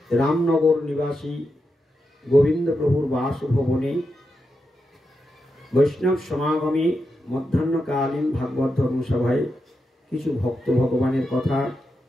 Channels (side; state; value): both; normal; correlation 0.87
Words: রামনগর নিবাসী গোবিন্দ প্রভুর বাসভবনে বৈষ্ণব সমাগমে মধ্যাহ্নকালীন ভাগবত ধর্মসভায় কিছু ভক্ত ভগবানের কথা